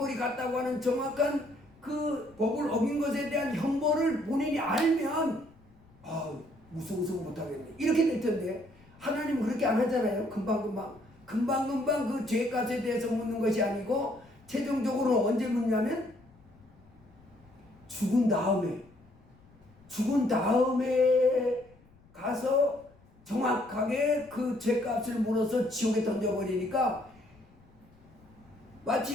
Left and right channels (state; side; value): noise; left; rumble, 28 dB below the sound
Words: 갔다고 하는 정확한 그 법을 어긴 것에 대한 형벌을 본인이 알면 무서워서 못하겠네 이렇게 될 텐데, 하나님은 그렇게 안 하잖아요. 금방금방 그 죄값에 대해서 묻는 것이 아니고 최종적으로 언제 묻냐면 죽은 다음에 가서 정확하게 그 죄값을 물어서 지옥에 던져버리니까,